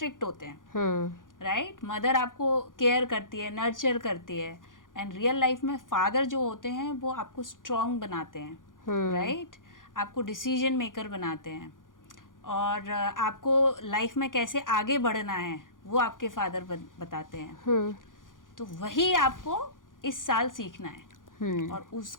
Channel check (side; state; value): right; late; 0.89 ms